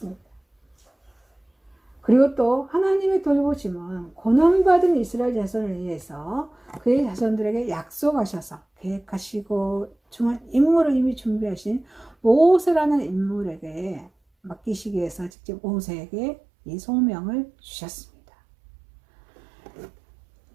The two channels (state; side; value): drops out; left; at 15.3 s